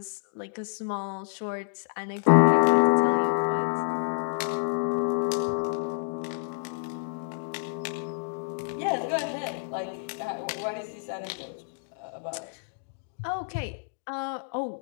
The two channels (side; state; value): right; silent; digital silence